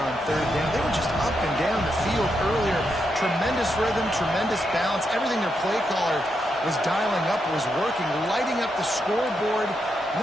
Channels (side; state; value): both; normal; correlation 0.83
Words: third down, they were just up and down the field earlier. Tremendous rhythm, tremendous balance. Everything their play caller was dialing up was working, lighting up the scoreboard. And